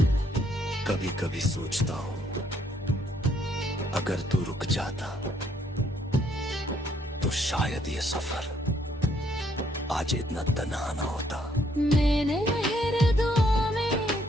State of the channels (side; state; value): both; normal; correlation 0.69